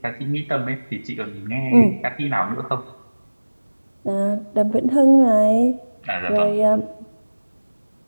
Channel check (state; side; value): inverted; both; correlation -1.00